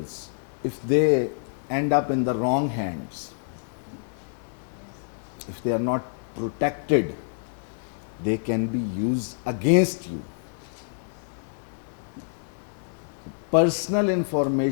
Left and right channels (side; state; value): right; silent; digital silence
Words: if they end up in the wrong hands, if they are not protected, they can be used against you. Personal